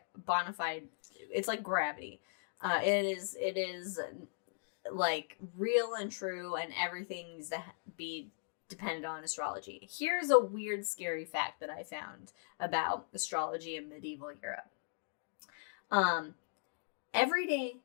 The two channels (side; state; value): right; silent; digital silence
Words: bona fide. It's like gravity. It is like real and true, and everything needs to be dependent on astrology. Here's a weird, scary fact that I found about astrology in medieval Europe. Everyday